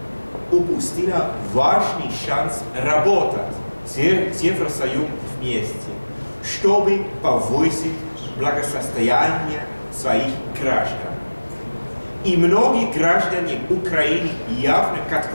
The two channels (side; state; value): both; inverted; correlation -1.00